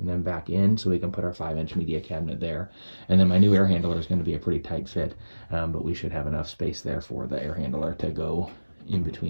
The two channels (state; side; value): inverted; both; correlation -1.00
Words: then back in so we can put our 5-inch media cabinet there. And then my new air handler is going to be a pretty tight fit, but we should have enough space there for the air handler to go in